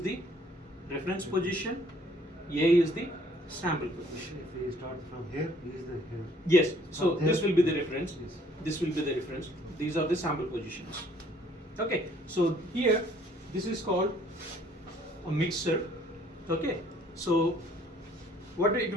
reference position, A is the sample position. If we start from here, B is the here. Yes, so this will be the reference. Yes. This will be the reference. These are the sample positions. Okay, so here this is called a mixer. Okay, so what it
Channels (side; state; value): both; normal; correlation 0.60